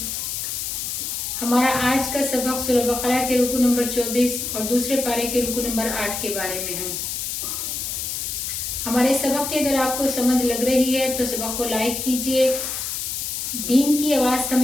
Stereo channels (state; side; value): noise; left; hiss, 3 dB below the sound